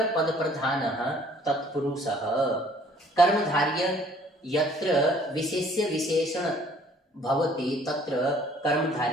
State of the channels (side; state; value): both; normal; correlation 0.57